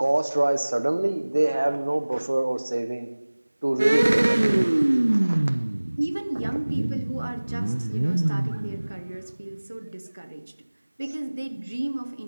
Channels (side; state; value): both; inverted; correlation -1.00